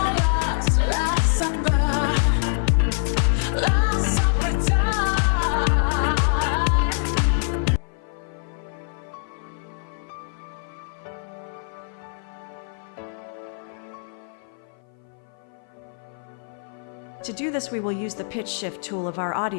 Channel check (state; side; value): silent; right; 56 dB below the other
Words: last summer time. To do this, we will use the pitch shift tool of our